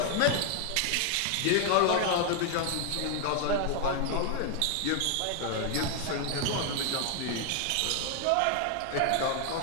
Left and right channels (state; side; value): different; both; correlation 0.00